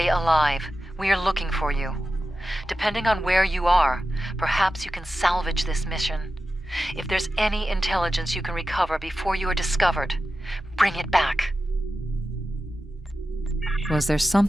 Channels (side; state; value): both; normal; correlation 0.92